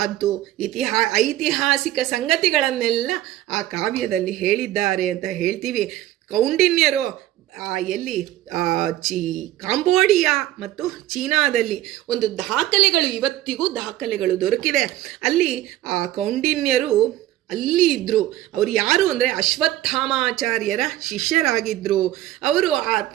ಅದು ಐತಿಹಾಸಿಕ ಸಂಗತಿಗಳನ್ನೆಲ್ಲ ಆ ಕಾವ್ಯದಲ್ಲಿ ಹೇಳಿದ್ದಾರೆ ಅಂತ ಹೇಳ್ತೀವಿ. ಕೌಂಡಿನ್ಯರು ಎಲ್ಲಿ ಕಾಂಬೋಡಿಯಾ ಮತ್ತು ಚೀನಾದಲ್ಲಿ ಒಂದು ದಾಖಲೆಗಳು, ಇವತ್ತಿಗೂ ದಾಖಲೆಗಳು ದೊರಕಿದೆ. ಅಲ್ಲಿ ಆ ಕೌಂಡಿನ್ಯರು ಅಲ್ಲಿ ಇದ್ದರು. ಅವರು ಯಾರು ಅಂದರೆ ಅಶ್ವತ್ಥಾಮಾಚಾರ್ಯರ ಶಿಷ್ಯರಾಗಿದ್ದರು. ಅವರು ಆ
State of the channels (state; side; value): quieter; left; 14.5 dB